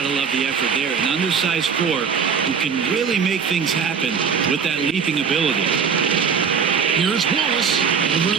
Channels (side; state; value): left; quieter; 6.4 dB